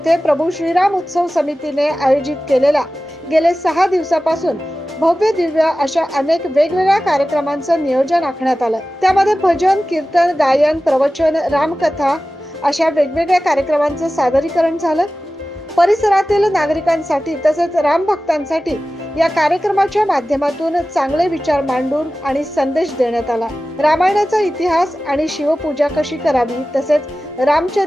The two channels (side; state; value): both; normal; correlation 0.95